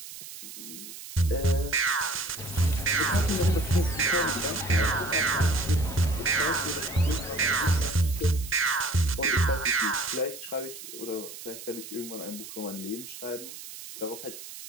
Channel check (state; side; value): noise; right; hiss, 13 dB below the sound